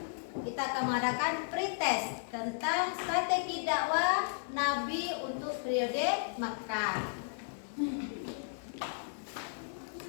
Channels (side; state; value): right; silent; digital silence